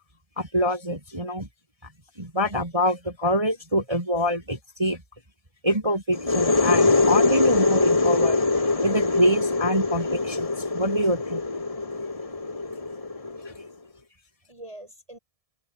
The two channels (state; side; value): late; left; 1.7 ms